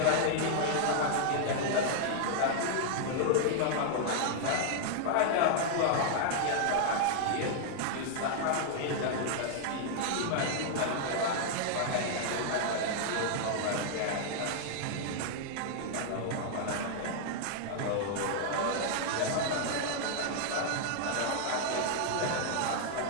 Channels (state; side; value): different; both; correlation 0.00